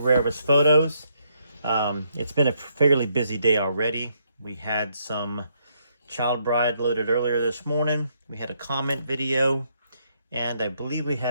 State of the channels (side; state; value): both; inverted; correlation -0.74